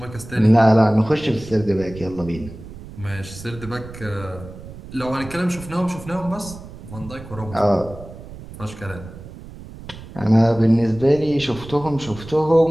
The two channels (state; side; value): noise; right; rumble, 15 dB below the sound